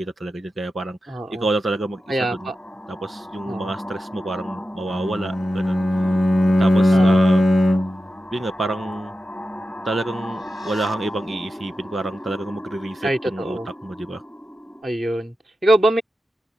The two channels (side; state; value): both; normal; correlation 0.91